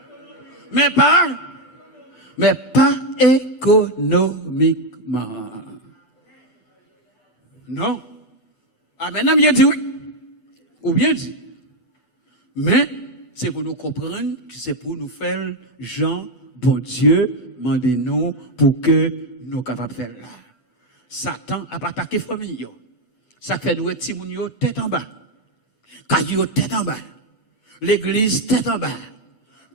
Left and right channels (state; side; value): late; right; 8.0 ms